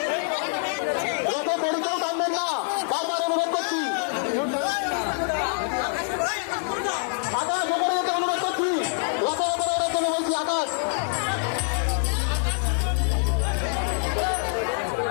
রথের দড়িতেও টানবেন না, বারবার অনুরোধ করছি। আকাশ উপরে যেতে অনুরোধ করছি, রথের উপরে ওঠার জন্য বলছি আকাশ।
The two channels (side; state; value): right; silent; 61 dB below the other